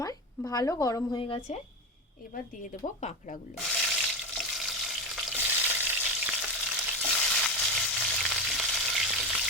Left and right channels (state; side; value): normal; both; correlation 0.19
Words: ভালো গরম হয়ে গেছে, এবার দিয়ে দেব কাঁকড়াগুলো।